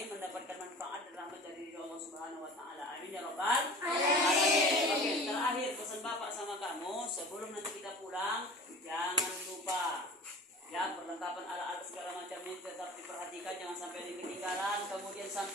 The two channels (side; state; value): both; normal; correlation 0.40